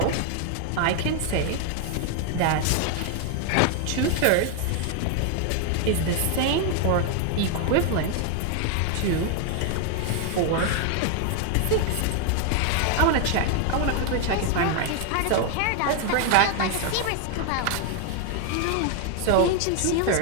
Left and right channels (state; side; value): different; both; correlation 0.00